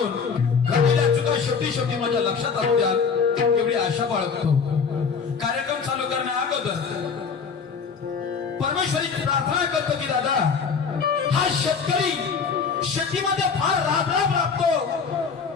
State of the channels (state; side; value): quieter; right; 5.8 dB